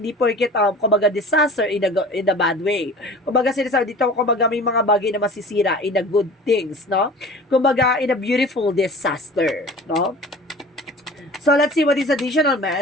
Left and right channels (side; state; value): both; normal; correlation 0.41